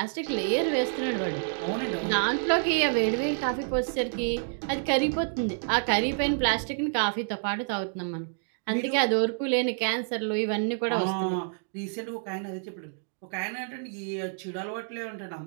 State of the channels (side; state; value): left; silent; digital silence